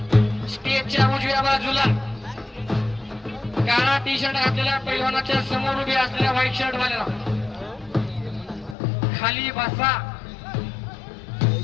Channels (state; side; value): drops out; right; at 8.8 s